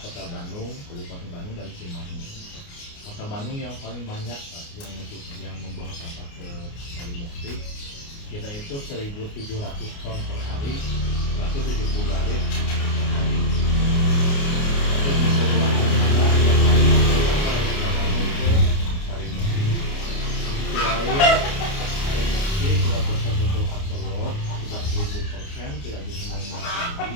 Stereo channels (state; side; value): late; right; 29 ms